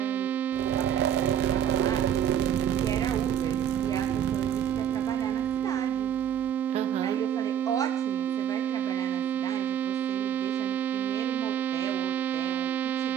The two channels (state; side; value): quieter; left; 9.6 dB